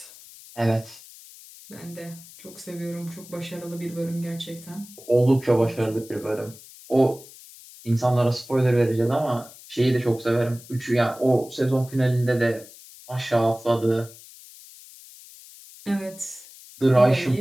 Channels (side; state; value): left; noise; hiss, 20 dB below the sound